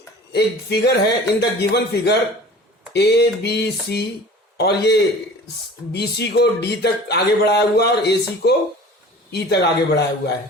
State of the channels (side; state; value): both; normal; correlation 0.42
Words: एक figure है, in the given figure A B C, और ये B C को D तक आगे बढ़ाया हुआ और ए सी को ई तक आगे बढ़ाया हुआ है.